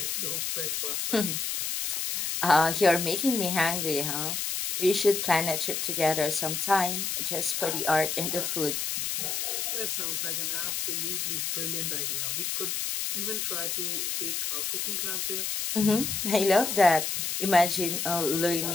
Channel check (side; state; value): left; noise; hiss, 1 dB below the sound